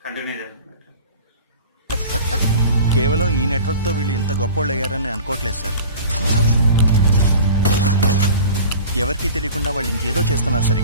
కంటిన్యూ చేద్దాం. కేవలం ఈ నెట్వర్క్తో వీళ్ళు ఇంత గొప్పోళ్ళు అయ్యారని అనుకోవట్లేదు సార్. ఎవరికి తెలియకుండా వాళ్ళు ఇంకేదో చేస్తున్నారు సార్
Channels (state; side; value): inverted; both; correlation -0.39